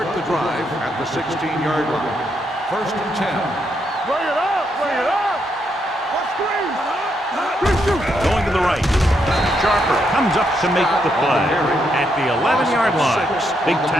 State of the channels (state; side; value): normal; both; correlation 0.78